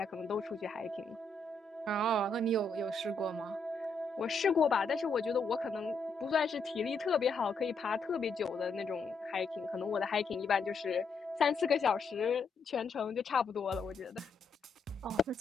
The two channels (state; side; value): quieter; right; 3.7 dB